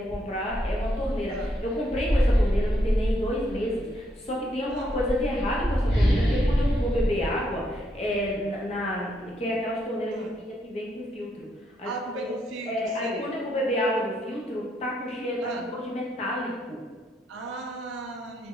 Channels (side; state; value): both; normal; correlation 0.75